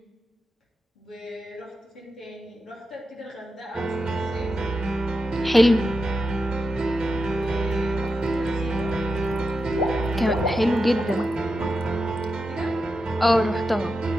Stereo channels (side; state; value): both; normal; correlation 0.88